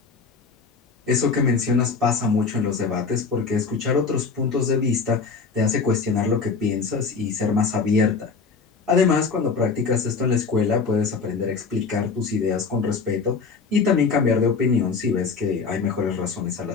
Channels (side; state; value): right; quieter; 5.0 dB